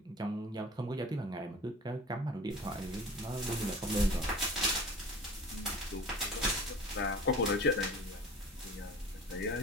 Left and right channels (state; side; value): normal; both; correlation 0.40